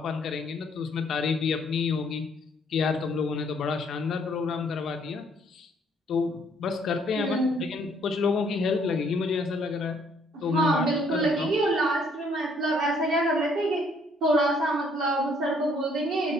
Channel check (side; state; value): both; normal; correlation 0.65